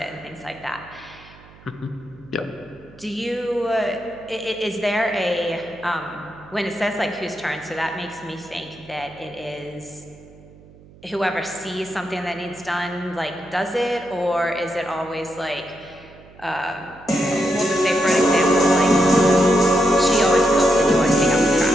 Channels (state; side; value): noise; right; hum, 23 dB below the sound